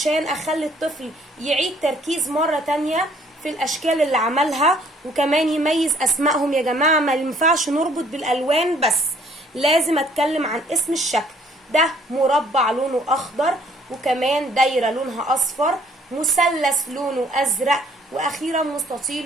اخلي الطفل يعيد تركيز مره تانية في الاشكال اللي عملها، وكمان يميز اسمائهم. يا جماعه ما ينفعش نربط بالالوان بس، لازم اتكلم عن اسم الشكل. ده مربع لونه اخضر، وكمان دايره لونها اصفر، مثلث لونه ازرق، واخيرا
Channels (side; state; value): both; normal; correlation 0.61